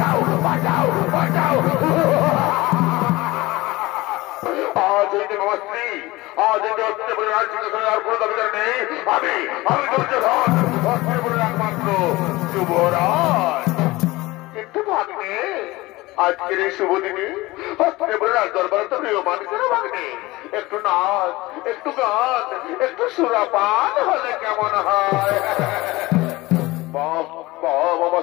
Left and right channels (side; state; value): right; quieter; 20.2 dB